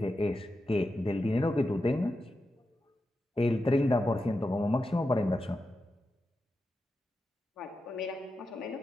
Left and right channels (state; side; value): normal; both; correlation 0.89